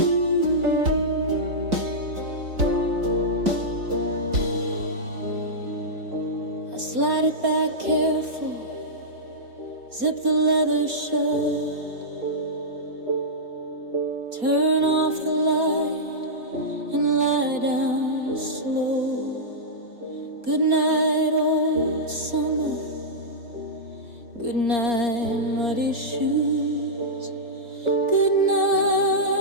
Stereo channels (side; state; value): left; late; 4.3 ms